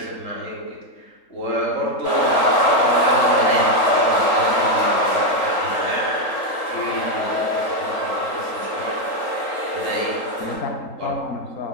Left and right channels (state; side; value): late; right; 3.8 ms